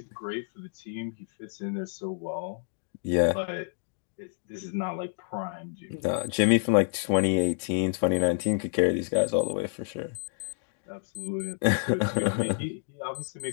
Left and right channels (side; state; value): right; silent; digital silence